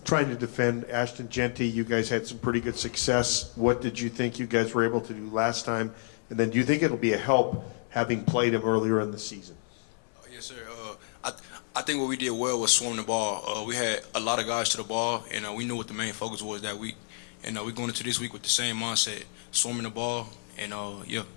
Trying to defend Ashton Jeanty, you guys had some pretty good success. What did you think you guys were able to do last time? And then do you think it'll be a help having played him earlier in the season? Yes, sir. I think what we did well was swarm the ball. We had a lot of guys to the ball, and we knew what the main focus was that week. And we're going into this week with the same mindset, swarming the ball, and yeah.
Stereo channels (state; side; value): silent; right; 58 dB below the other